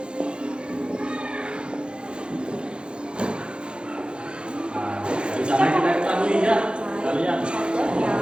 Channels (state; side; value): late; left; 0.053 ms